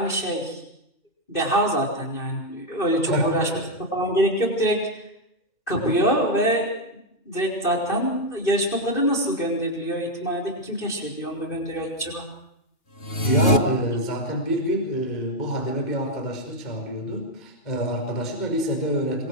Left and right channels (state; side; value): late; right; 2.5 ms